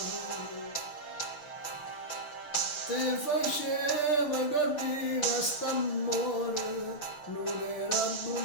ti faceva capire che st'amore non era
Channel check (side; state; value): right; late; 6.8 ms